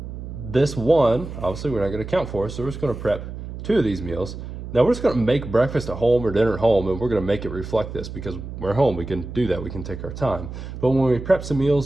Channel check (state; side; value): noise; right; hum, 9 dB below the sound